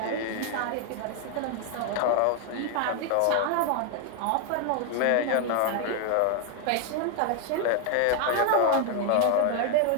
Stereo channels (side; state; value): both; different; correlation 0.00